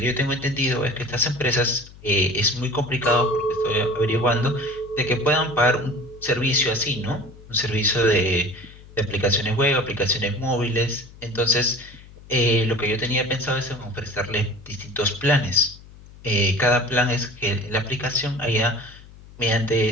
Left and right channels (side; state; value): left; noise; hum, 20 dB below the sound